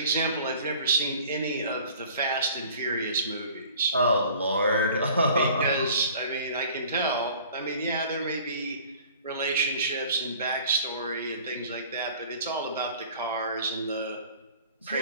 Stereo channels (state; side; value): inverted; both; correlation -0.48